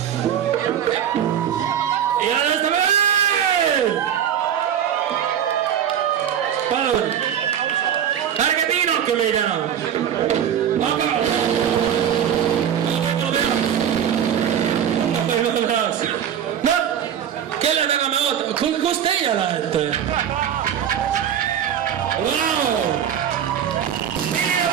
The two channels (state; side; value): quieter; left; 9.3 dB